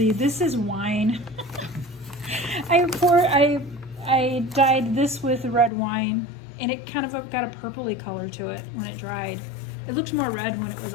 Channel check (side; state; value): right; drops out; at 5.7 s